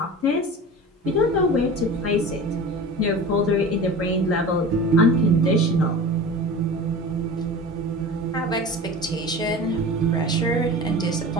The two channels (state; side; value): normal; both; correlation 0.35